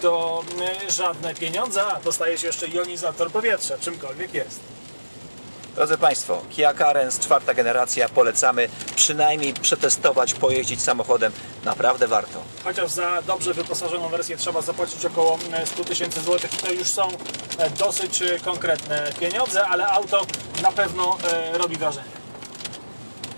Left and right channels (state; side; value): inverted; both; correlation -1.00